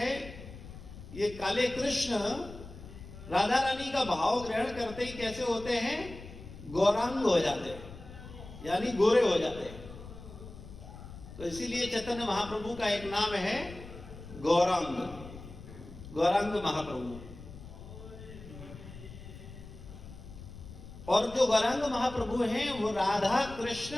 ये काले कृष्ण राधा रानी का भाव ग्रहण करते ही कैसे होते हैं, गौरांग हो जाते हैं, यानी गोरे हो जाते हैं। तो इसीलिए चैतन्य महाप्रभु का एक नाम है गौरांग, गौरांग महाप्रभु। और जो गौरांग महाप्रभु हैं वो राधा कृष्ण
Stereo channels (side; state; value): left; noise; rumble, 14 dB below the sound